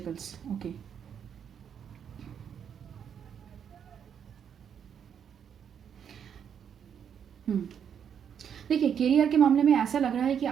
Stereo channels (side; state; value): left; quieter; 8.1 dB